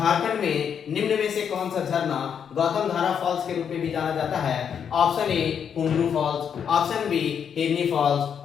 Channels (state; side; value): quieter; right; 7.7 dB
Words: में निम्न में से कौन सा झरना गौतम धारा फॉल्स के रूप में भी जाना जाता है? Option A Hundru falls, option B Hirni falls,